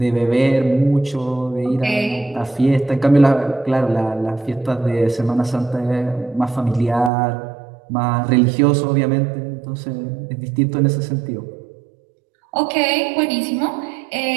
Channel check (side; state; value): left; drops out; at 7.1 s